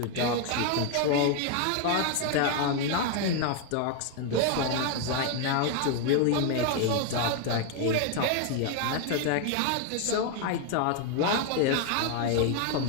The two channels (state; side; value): different; both; correlation 0.01